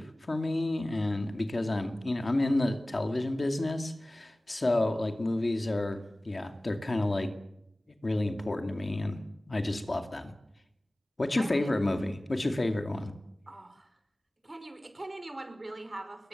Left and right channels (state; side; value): normal; both; correlation 0.98